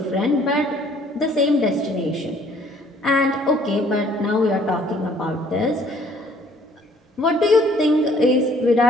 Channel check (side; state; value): both; normal; correlation 0.59